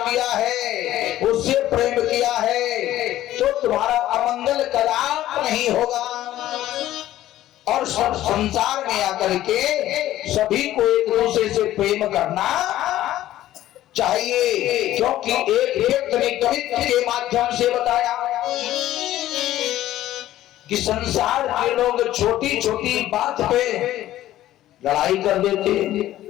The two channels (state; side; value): quieter; right; 13.9 dB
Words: है, उससे प्रेम किया है, तो तुम्हारा अमंगल कदाप नहीं होगा। और सब संसार में आकर के सभी को एक दूसरे से प्रेम करना चाहिए, क्योंकि एक व्यक्ति ने कवित्व के माध्यम से बताया कि संसार के लोग छोटी छोटी बात पे लड़ाई कर देते हैं,